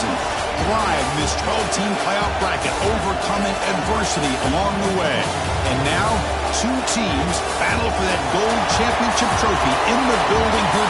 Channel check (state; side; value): identical; both; correlation 1.00